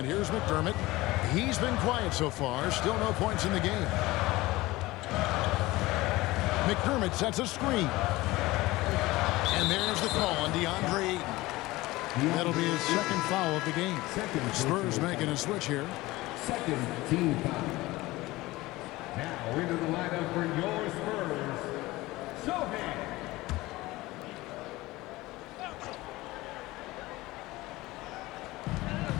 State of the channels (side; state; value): right; quieter; 19.4 dB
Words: here's McDermott. He's been quiet so far. Still no points in the game. McDermott sets a screen. And there's the call on DeAndre Ayton. That'll be his second foul of the game. Spurs making a switch here. Second team foul. Now into the lineup for your Spurs, Sohan.